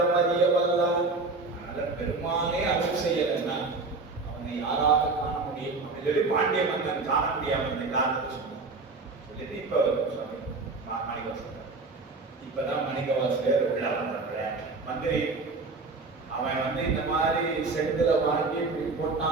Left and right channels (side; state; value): left; quieter; 3.8 dB